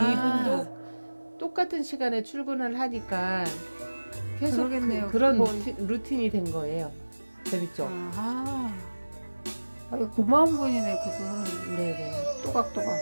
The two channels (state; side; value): inverted; both; correlation -1.00